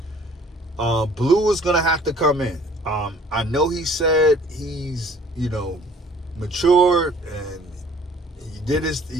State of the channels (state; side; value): normal; both; correlation 0.54